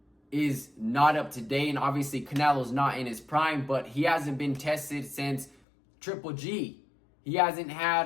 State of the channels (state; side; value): drops out; right; at 5.6 s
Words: is not up to date. And obviously Canelo's not in his prime, but he hasn't been tested since Triple G. He hasn't